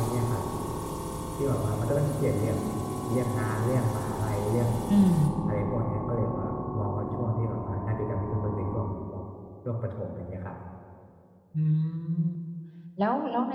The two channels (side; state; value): both; identical; correlation 1.00